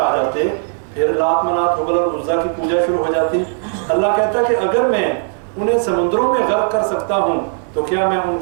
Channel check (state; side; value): silent; left; digital silence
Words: جاتے پھر لات منات حبل اور عزا کی پوجا شروع ہو جاتی۔ اللہ کہتا کہ اگر میں انہیں سمندروں میں غرق کر سکتا ہوں تو کیا میں ان